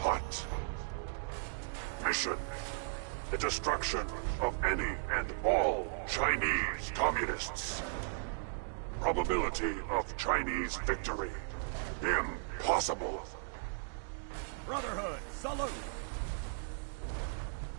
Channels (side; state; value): left; silent; digital silence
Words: Mission: the destruction of any and all Chinese communists. Probability of Chinese victory: impossible. Brotherhood, salute!